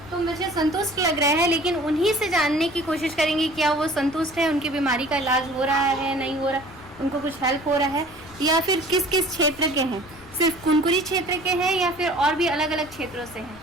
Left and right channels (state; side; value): noise; left; rumble, 22 dB below the sound